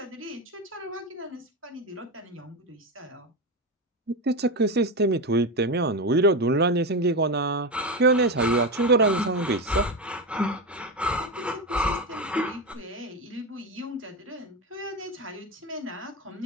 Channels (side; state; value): both; normal; correlation 0.16